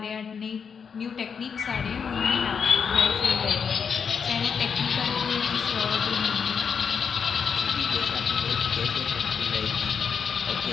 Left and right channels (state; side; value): quieter; right; 6.5 dB